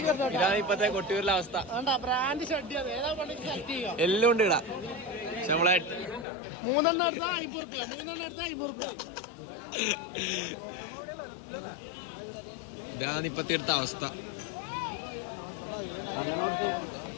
ഇതാണ് ഇപ്പത്തെ കൊട്ടിയൂരിലെ അവസ്ഥ. എല്ലാം ഉണ്ട് ഇടാ. പക്ഷെ നമ്മളെ ഇതാണ് ഇപ്പത്തെ എടുത്ത അവസ്ഥ.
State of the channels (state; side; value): drops out; right; at 6.2 s